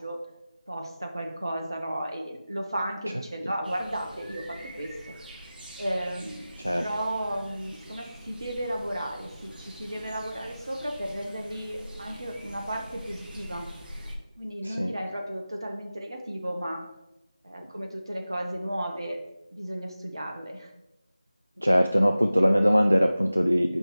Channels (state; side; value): inverted; both; correlation -0.96